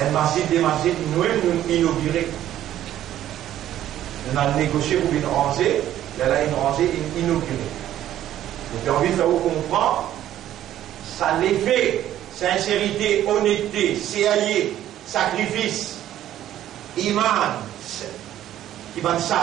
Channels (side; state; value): left; quieter; 12.3 dB